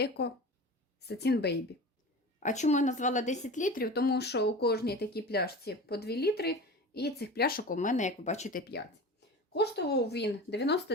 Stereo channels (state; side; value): normal; both; correlation 0.33